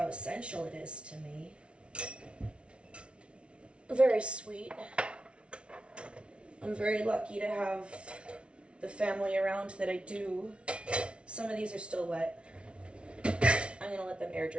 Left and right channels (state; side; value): late; left; 0.059 ms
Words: essential it is to me. Very sweet. I'm very lucky to have the family around that I do. Some of these are still wet. I'm going to let them air